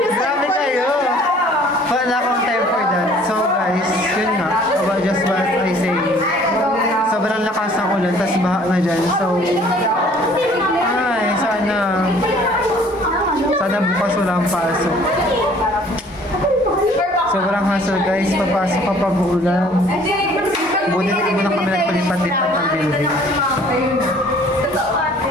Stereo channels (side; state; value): both; normal; correlation 0.55